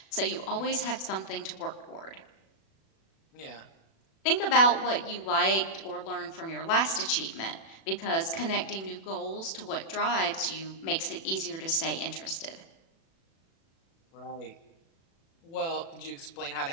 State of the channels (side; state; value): right; late; 36 ms